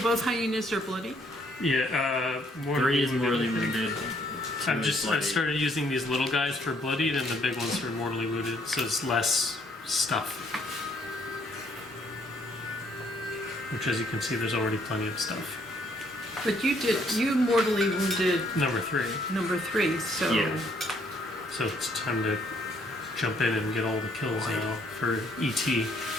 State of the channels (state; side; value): normal; both; correlation 0.68